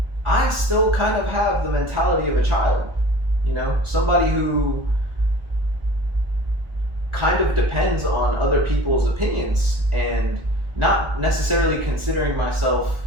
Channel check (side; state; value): left; late; 1.6 ms